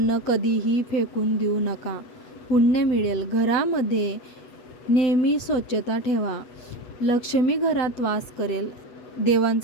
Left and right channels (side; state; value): right; late; 8.1 ms